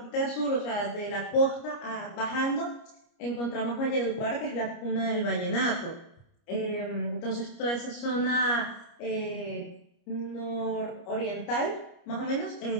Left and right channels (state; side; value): late; right; 29 ms